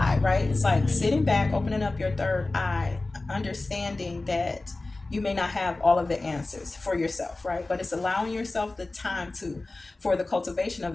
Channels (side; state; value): right; quieter; 3.1 dB